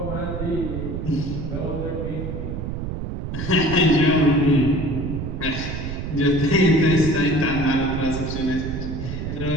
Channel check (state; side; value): noise; right; rumble, 5 dB below the sound